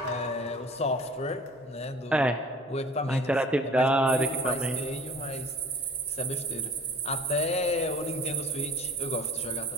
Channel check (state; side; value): normal; both; correlation 0.47